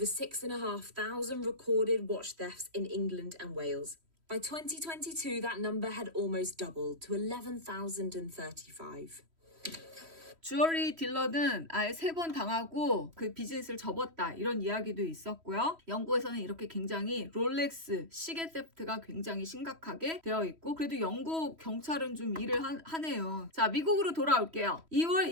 6,500 recorded watch thefts in England and Wales. By 2022, that number had almost doubled to 11,035. 주얼리 딜러는 아예 3번 당하고 그 비즈니스를 접었다 이런 이야기도 있었고요. 영국에서는 이렇게 굉장히 롤렉스 시계 세프트가 굉장히 심각하게 되어 있고 그래도 영국 경찰은 좀 일을 하네요. 자, 미국으로 돌아올게요. 2월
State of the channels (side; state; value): left; late; 3.1 ms